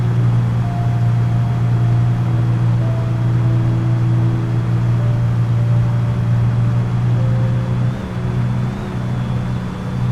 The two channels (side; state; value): both; identical; correlation 1.00